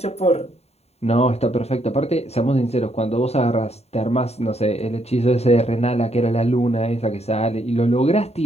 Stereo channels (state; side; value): late; right; 0.30 ms